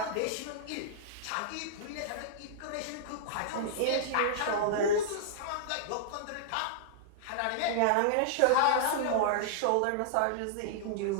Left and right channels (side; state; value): both; different; correlation -0.02